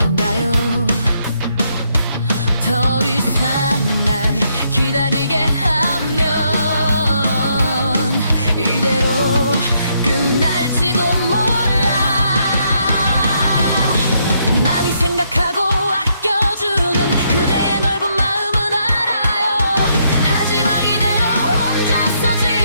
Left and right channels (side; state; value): both; inverted; correlation -0.74